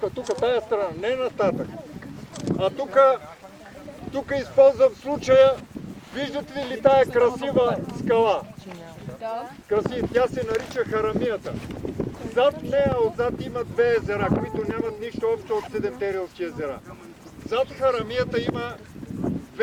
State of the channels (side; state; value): both; identical; correlation 1.00